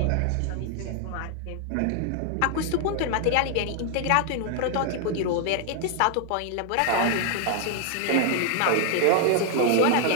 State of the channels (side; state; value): both; different; correlation 0.00